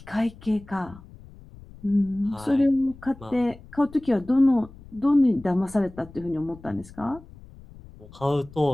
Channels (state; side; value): noise; left; rumble, 20 dB below the sound